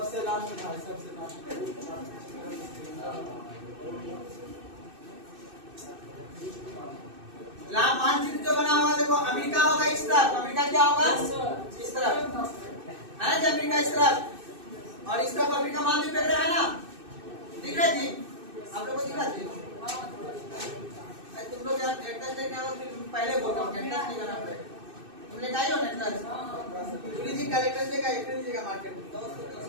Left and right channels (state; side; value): late; left; 2.6 ms